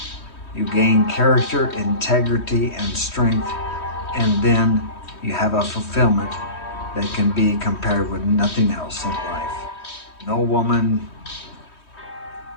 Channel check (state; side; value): late; right; 3.2 ms